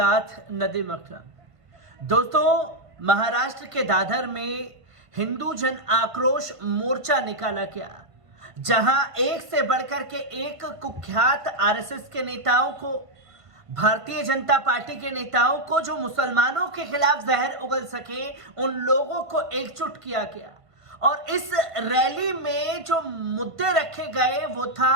नदीम अकरम। दोस्तों, महाराष्ट्र के दादर में हिंदू जन आक्रोश मोर्चा निकाला गया, जहां एक से बढ़कर के एक कुख्यात आरएसएस के नेताओं को, भारतीय जनता पार्टी के नेताओं को, जो मुसलमानों के खिलाफ जहर उगल सके, उन लोगों को एकजुट किया गया। और इस रैली में जो मुद्दे रखे गए वो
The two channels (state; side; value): late; left; 1.5 ms